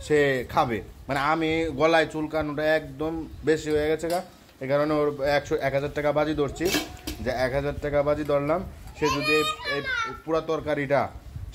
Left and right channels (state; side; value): identical; both; correlation 1.00